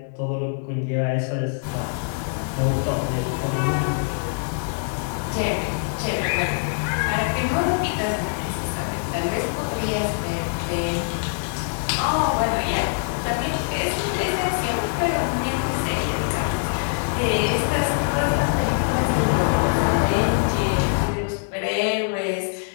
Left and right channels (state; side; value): silent; right; digital silence